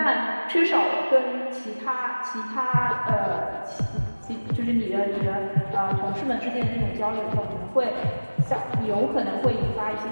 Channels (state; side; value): inverted; both; correlation -1.00